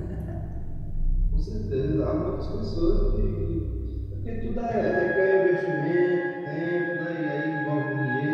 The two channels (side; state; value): both; identical; correlation 1.00